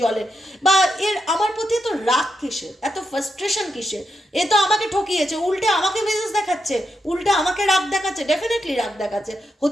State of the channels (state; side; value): normal; both; correlation 0.85